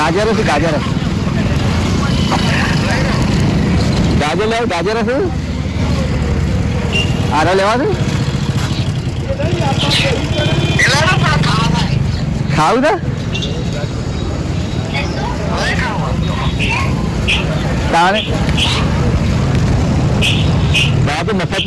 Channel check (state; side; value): identical; both; correlation 1.00